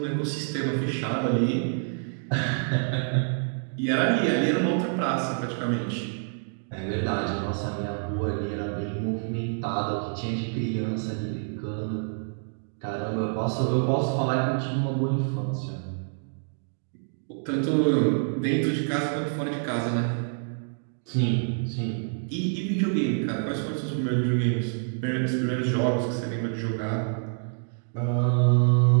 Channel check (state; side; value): silent; left; digital silence